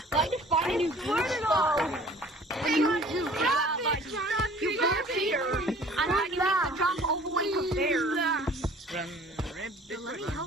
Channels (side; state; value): both; normal; correlation 0.50